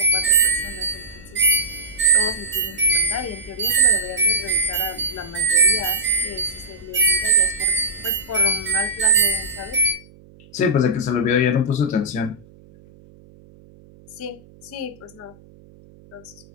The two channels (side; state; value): right; noise; hum, 25 dB below the sound